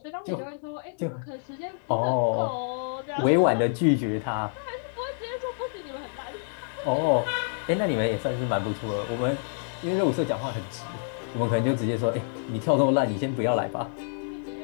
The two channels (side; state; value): right; silent; digital silence